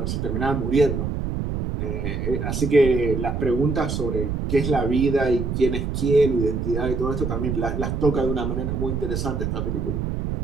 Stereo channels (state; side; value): noise; right; rumble, 2 dB below the sound